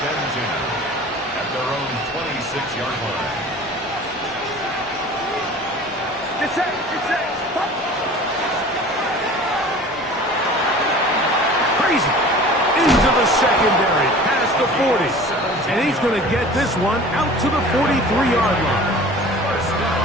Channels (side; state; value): both; normal; correlation 0.42